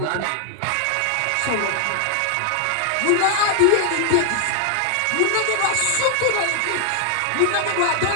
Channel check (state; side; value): different; both; correlation 0.00